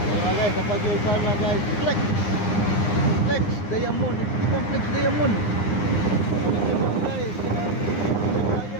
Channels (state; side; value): late; right; 9.8 ms